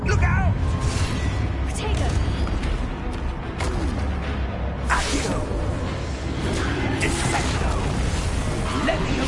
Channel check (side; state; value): both; identical; correlation 1.00